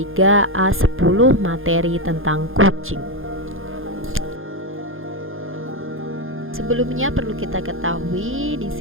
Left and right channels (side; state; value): left; late; 0.60 ms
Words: A10 materi tentang kucing. Sebelumnya perlu kita ketahui di